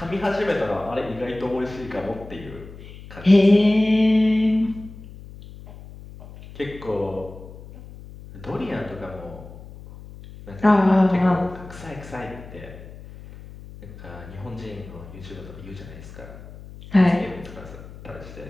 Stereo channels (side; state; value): left; noise; hum, 16 dB below the sound